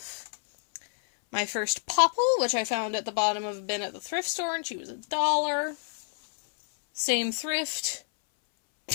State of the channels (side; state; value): right; silent; 59 dB below the other